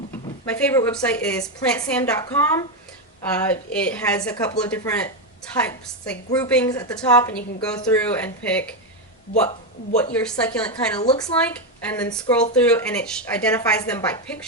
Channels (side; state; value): both; normal; correlation 0.07